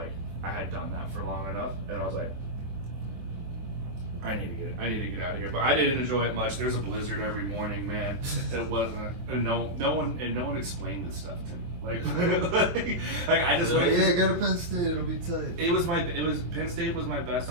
I had done that for long enough, and I was like, I need to get out of here. But I didn't enjoy it much. There's a blizzard every morning, man. It wasn't, and no one explained this stuff to me. Like I just went. Yeah, go to Penn State. It'll be tight. Penn State was my best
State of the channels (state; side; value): late; left; 23 ms